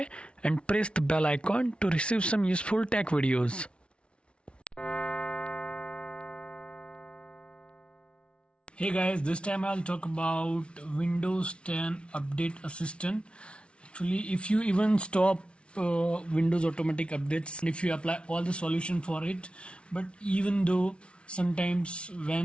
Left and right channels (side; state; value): right; late; 0.059 ms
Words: and press the bell icon to receive some useful tech videos. Hey guys, this time I'll talk about Windows 10 Update Assistant. Actually, if you even stop Windows automatic updates, and if you apply all the solution for it, but even though sometimes